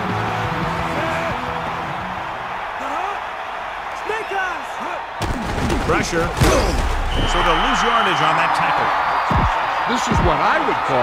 Pressure. So they'll lose yardage on that tackle. This is what I would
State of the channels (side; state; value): both; identical; correlation 1.00